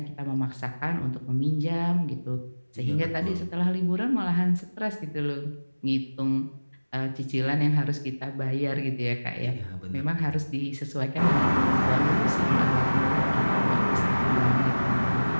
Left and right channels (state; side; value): inverted; both; correlation -1.00